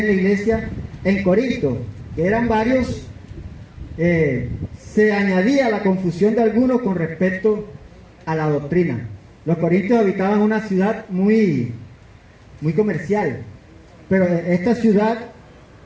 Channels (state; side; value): identical; both; correlation 1.00